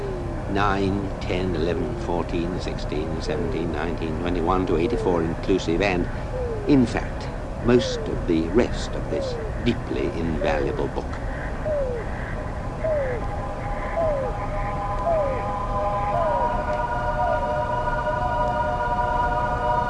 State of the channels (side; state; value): both; identical; correlation 1.00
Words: 9, 10, 11, 14, 16, 17, 19, 21 to 84 inclusive, and, in fact, most of the rest of this deeply invaluable book.